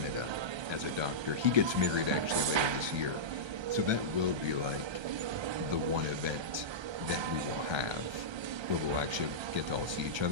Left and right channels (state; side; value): late; left; 1.3 ms